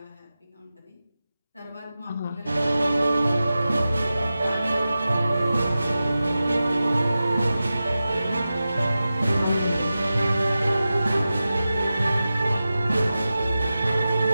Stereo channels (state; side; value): inverted; both; correlation -0.94